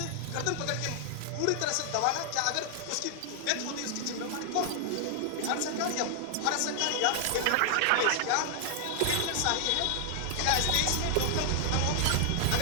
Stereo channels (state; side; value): different; both; correlation 0.00